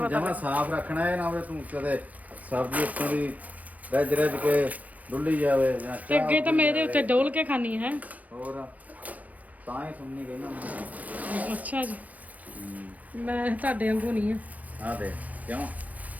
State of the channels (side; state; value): left; late; 0.076 ms